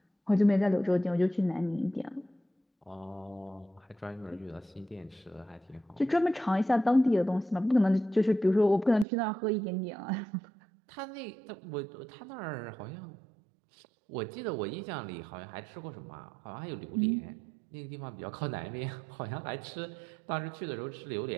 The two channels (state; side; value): drops out; left; at 9.1 s